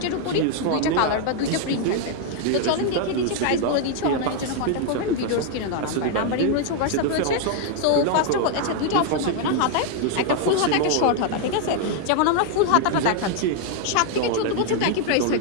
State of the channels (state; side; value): different; both; correlation 0.00